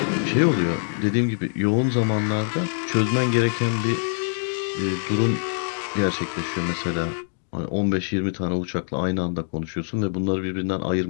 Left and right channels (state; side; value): silent; right; digital silence